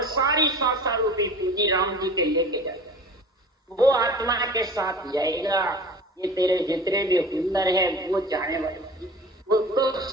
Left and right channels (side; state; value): both; normal; correlation 0.40